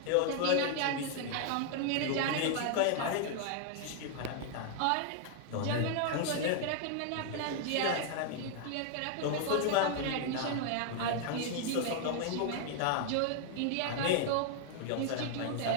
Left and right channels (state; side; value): different; both; correlation 0.00